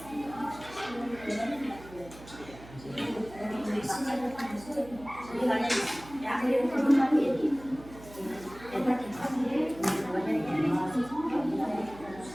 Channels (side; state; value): right; noise; hum, 18 dB below the sound